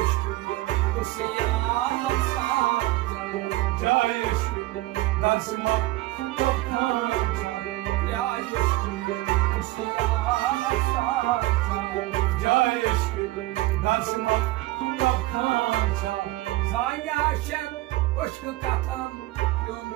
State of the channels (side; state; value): left; quieter; 18.2 dB